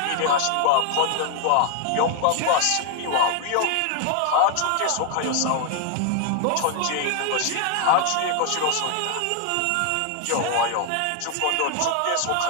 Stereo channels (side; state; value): both; different; correlation 0.00